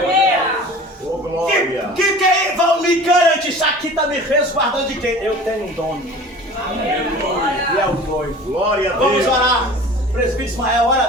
Que vão me garantir? Isso aqui está me resguardando de quem? Eu tenho um dono. E é o noivo. Glória a Deus. Vamos orar. Presbítero Ismael, ora a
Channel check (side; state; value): both; normal; correlation 0.42